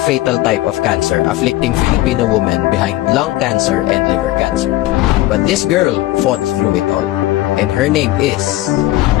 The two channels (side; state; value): right; quieter; 16.8 dB